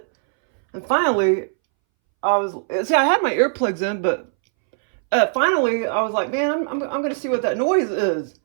And finally, I had my earplugs in, but finally I was like, man, I'm going to see what that noise is.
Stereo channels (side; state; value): left; silent; 64 dB below the other